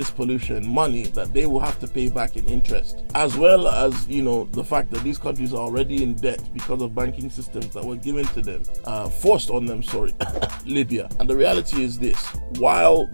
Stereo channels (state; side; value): inverted; both; correlation -1.00